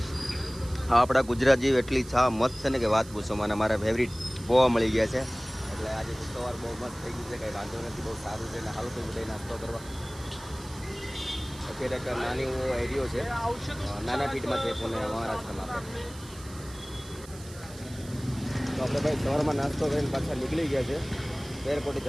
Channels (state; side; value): noise; right; hiss, 18 dB below the sound